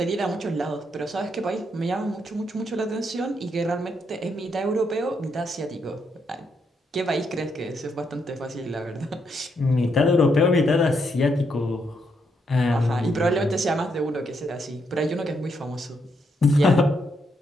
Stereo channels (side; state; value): both; normal; correlation 0.77